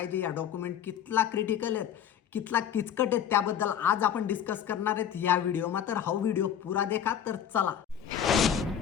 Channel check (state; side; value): quieter; right; 9.2 dB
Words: या डॉक्युमेंट कितला क्रिटिकल आहेत कितला किचकट आहेत त्याबद्दल आज आपण डिस्कस करणार आहेत या व्हिडिओमा। तर हा व्हिडिओ पुरा देखा। तर चला